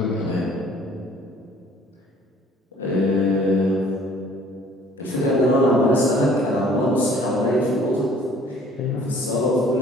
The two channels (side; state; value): both; normal; correlation 0.55